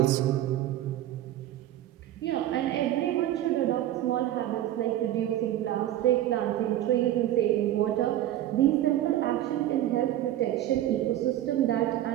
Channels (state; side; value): quieter; left; 13.1 dB